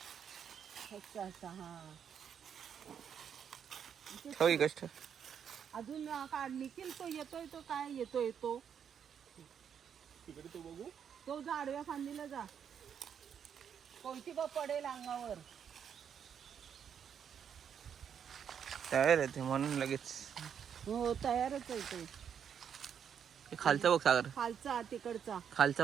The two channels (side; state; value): left; quieter; 8.0 dB